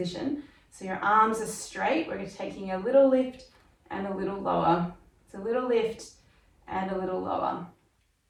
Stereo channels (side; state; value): both; identical; correlation 1.00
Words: So your arms are straight. We're taking a little lift and a little lower. It's a little lift and a little lower.